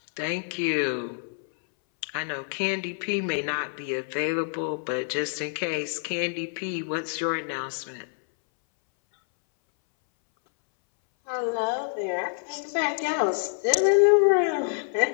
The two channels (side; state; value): right; silent; 60 dB below the other